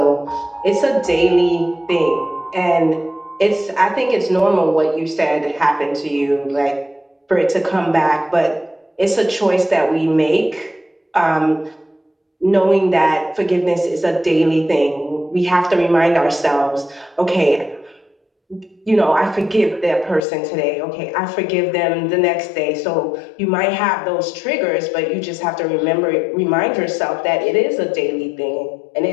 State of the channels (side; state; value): right; drops out; at 20.2 s